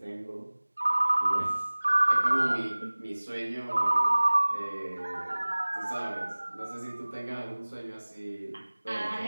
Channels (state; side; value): inverted; both; correlation -1.00